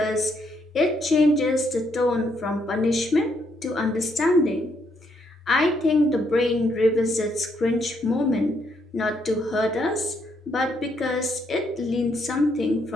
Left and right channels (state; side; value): normal; both; correlation 0.74